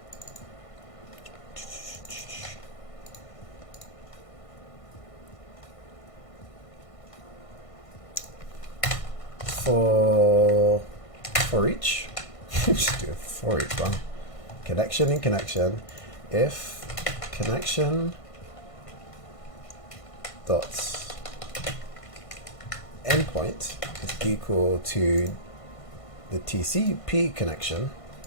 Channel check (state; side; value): late; right; 1.5 ms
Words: For each, just do it for each one. Connection in connection. If connection dot endpoint is equal to the TCP connection